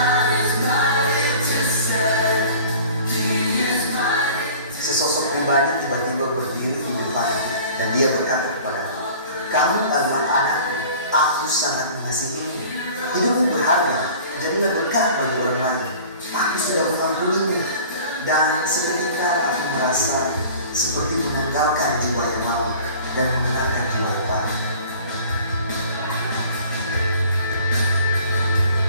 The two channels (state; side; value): inverted; both; correlation -0.46